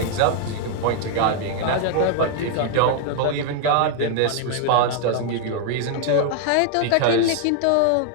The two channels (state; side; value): different; both; correlation 0.00